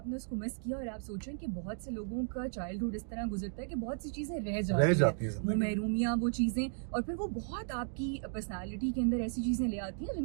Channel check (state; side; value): silent; left; digital silence